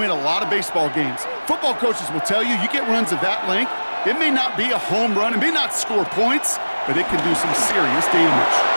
a lot of baseball games. Football coaches will tell you get runs of that length. It may not be a home run, it may not score points, but it can do some serious damage.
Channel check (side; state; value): both; inverted; correlation -1.00